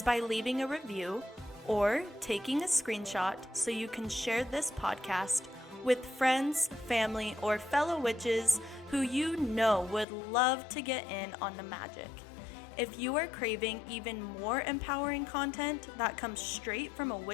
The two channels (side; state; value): right; drops out; at 10.1 s